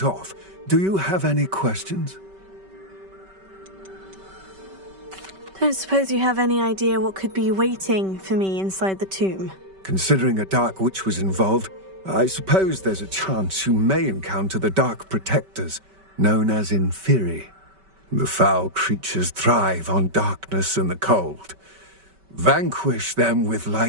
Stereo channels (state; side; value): late; left; 5.2 ms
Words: off, do you have any questions? Don't suppose you have any idea what could be waiting for me inside the tomb? Considering a dark witch was involved, I suppose there's a chance you may encounter the Dark Protectors, known as Inferi. The foul creatures thrive on darkness and the cold. Vanquish them with